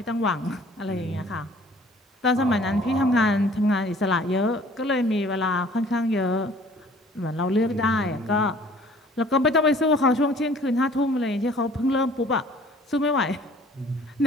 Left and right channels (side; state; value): both; normal; correlation 0.53